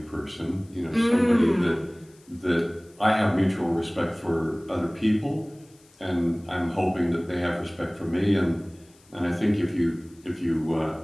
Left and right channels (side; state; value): left; noise; hiss, 29 dB below the sound